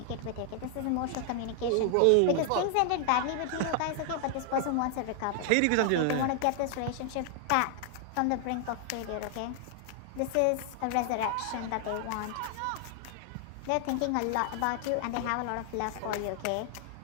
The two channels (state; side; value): different; both; correlation 0.00